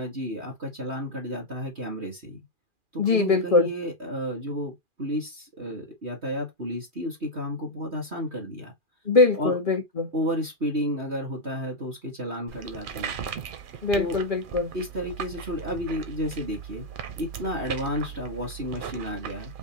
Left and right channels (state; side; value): late; left; 2.4 ms